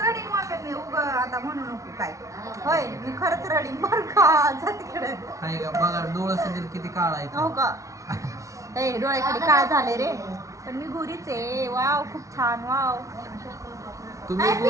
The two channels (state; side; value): late; left; 0.15 ms